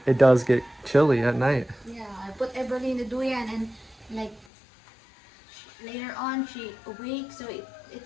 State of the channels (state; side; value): drops out; right; at 4.5 s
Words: it does get chilly at night. Yeah, I put Everly in the duyan and later on she awake, so